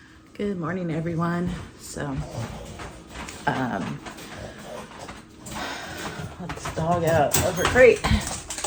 Good morning, everyone. So, let's dog out over crate.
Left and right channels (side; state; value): both; identical; correlation 1.00